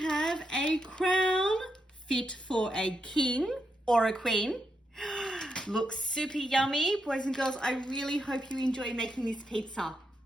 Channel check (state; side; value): normal; both; correlation 0.82